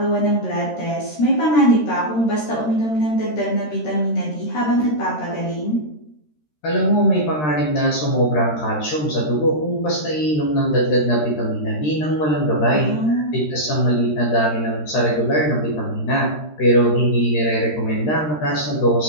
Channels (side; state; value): right; late; 13 ms